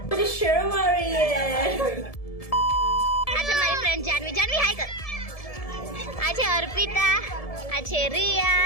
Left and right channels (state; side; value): late; right; 1.7 ms